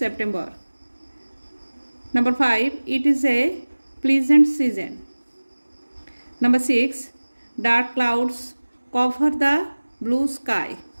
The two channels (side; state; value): both; inverted; correlation -1.00